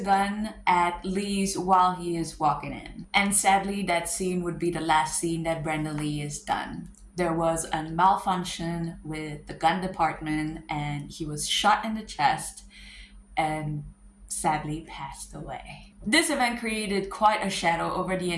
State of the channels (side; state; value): both; identical; correlation 1.00